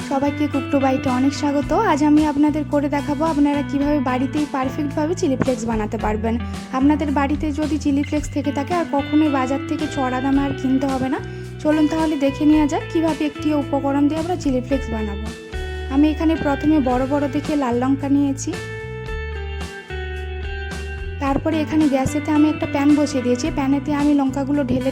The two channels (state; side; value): identical; both; correlation 1.00